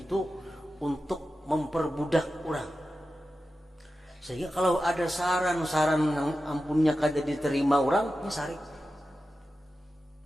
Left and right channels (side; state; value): both; normal; correlation 0.92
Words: untuk memperbudak orang. Sehingga kalau ada saran-saran yang ampunnya kada diterima orang, ini sarik.